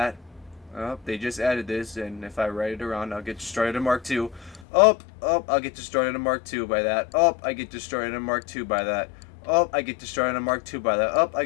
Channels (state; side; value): drops out; right; at 4.7 s